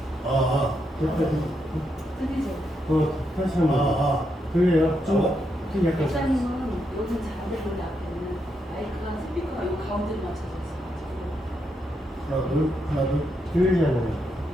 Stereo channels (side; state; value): both; normal; correlation 0.81